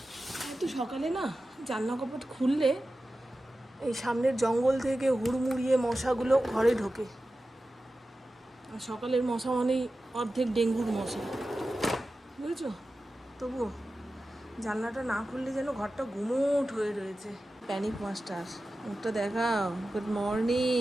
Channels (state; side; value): normal; both; correlation 0.94